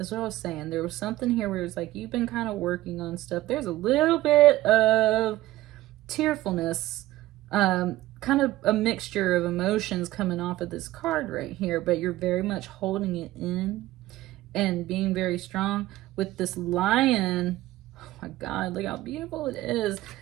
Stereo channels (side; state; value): left; quieter; 16.4 dB